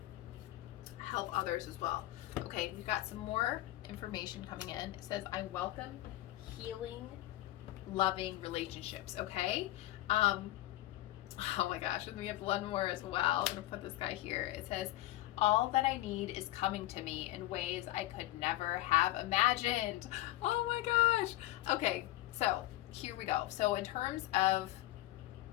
others as well. Okay, we've got some more information coming in. It says, I welcome healing, loving relationships. Okay. Oh my gosh, and we have one more as well. I'm gonna put this guy here. It says, all that I need is coming to me in ways I could never have imagined. Oh my gosh. Okay, so here we go. So in terms of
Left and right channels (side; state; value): right; quieter; 16.1 dB